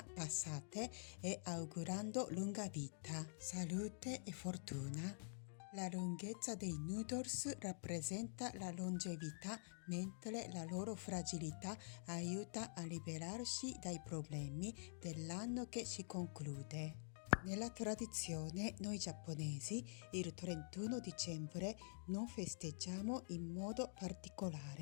passate e augurando lunga vita, salute e fortuna. La lunghezza dei noodles rappresenta la longevità, mentre la loro fragilità aiuta a liberarsi dai problemi dell'anno che si conclude. Nella tradizione, noi giapponesi, il 31 dicembre non festeggiamo in modo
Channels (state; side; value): silent; right; digital silence